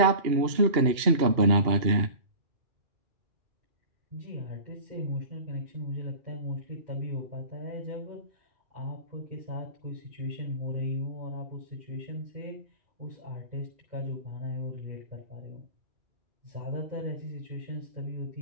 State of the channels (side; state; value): left; late; 2.8 ms